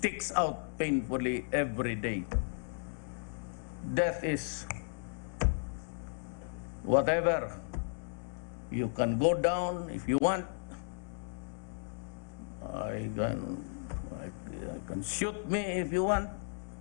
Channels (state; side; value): silent; right; digital silence